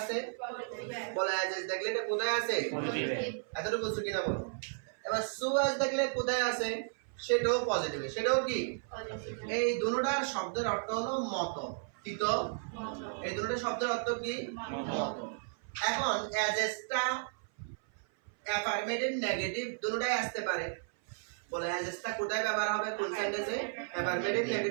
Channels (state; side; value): silent; left; 55 dB below the other